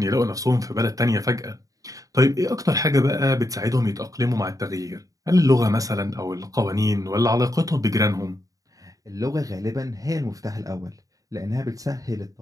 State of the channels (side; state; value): left; late; 0.17 ms